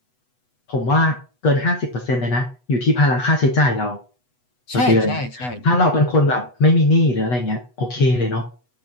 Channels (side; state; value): right; late; 8.1 ms